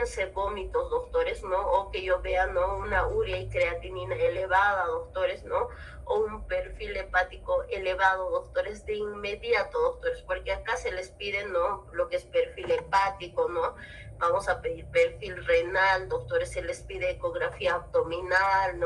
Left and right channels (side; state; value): both; identical; correlation 1.00